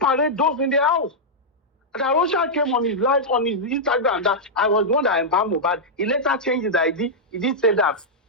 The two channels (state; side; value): normal; both; correlation -0.08